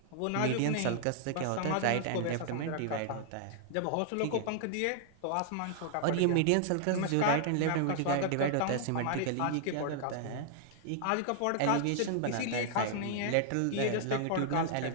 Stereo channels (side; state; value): both; different; correlation -0.01